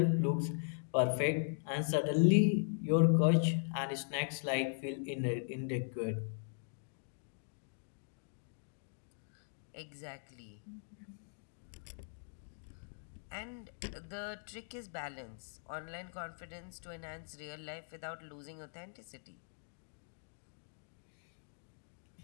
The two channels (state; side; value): silent; right; digital silence